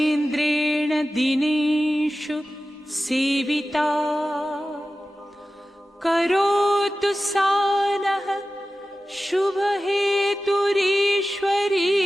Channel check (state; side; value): normal; both; correlation 0.95